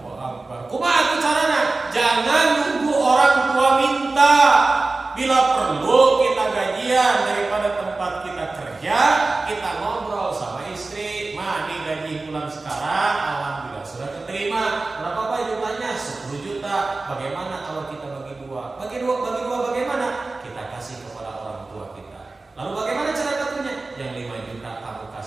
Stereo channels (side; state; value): left; quieter; 3.4 dB